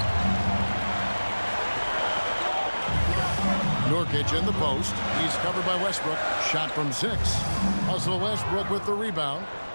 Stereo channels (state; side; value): inverted; both; correlation -1.00